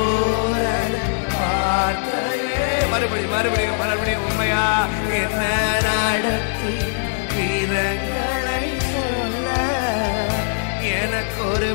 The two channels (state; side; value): silent; right; 65 dB below the other